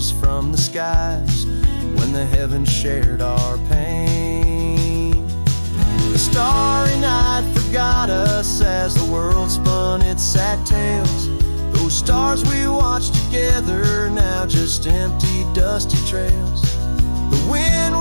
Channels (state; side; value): inverted; both; correlation -1.00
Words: from the skies when the heavens shared our pain. The starry night forgot us as the world spun its sad tales. Those stars we watched together, now just empty, dusty trails. The wind